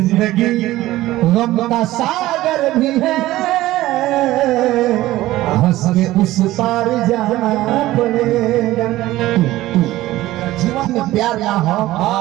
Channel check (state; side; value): quieter; left; 16.3 dB